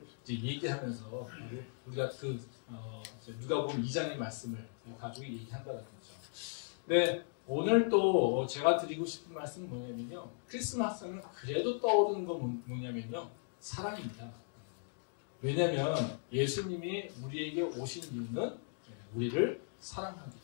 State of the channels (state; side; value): silent; right; digital silence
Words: 이제 얘기하면서 우리가 그 누가복음 2장의 말씀을 가지고 얘기한다는 거죠. 네, 오늘 또 제가 드리고 싶은 말씀은 뭐냐면요. 크리스마스는 그래도 떠오르는 건 뭐냐면요. 사랑입니다. 왜냐하면 예수님이 우리에게 오신 이유는 우리를 사랑하기